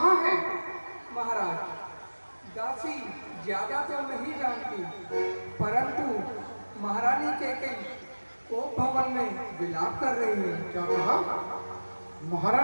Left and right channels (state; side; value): inverted; both; correlation -1.00